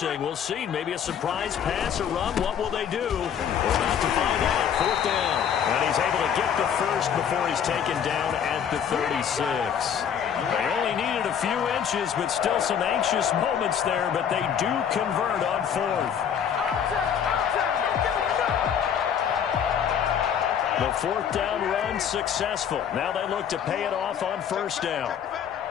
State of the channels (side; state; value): right; quieter; 8.3 dB